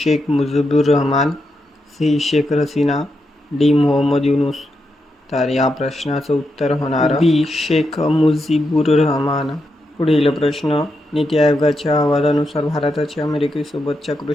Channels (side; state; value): both; normal; correlation 0.84